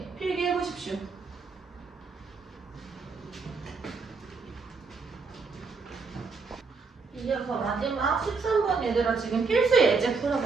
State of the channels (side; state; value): left; quieter; 4.6 dB